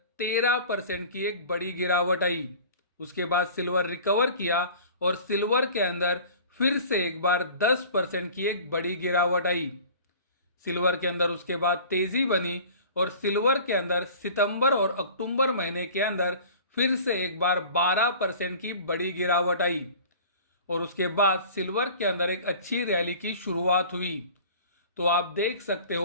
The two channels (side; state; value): both; inverted; correlation -0.43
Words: 13% की एक बड़ी गिरावट आई। उसके बाद सिल्वर रिकवर किया और सिल्वर के अंदर फिर से एक बार 10% की एक बड़ी गिरावट आई। सिल्वर के अंदर उसके बाद तेजी बनी और सिल्वर के अंदर सितंबर और अक्टूबर महीने के अंदर फिर से एक बार 12% की बड़ी गिरावट आई। और उसके बाद सिल्वर के अंदर एक अच्छी रैली की शुरुआत हुई। तो आप देख सकते